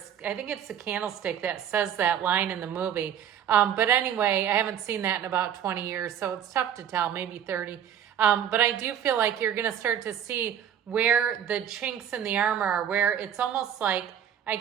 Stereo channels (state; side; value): quieter; left; 9.4 dB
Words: think it's the candlestick that says that line in the movie. But anyway, I haven't seen that in about 20 years, so it's tough to tell, maybe 30. But I do feel like you're going to start to see where the chinks in the armor are, where it's almost like I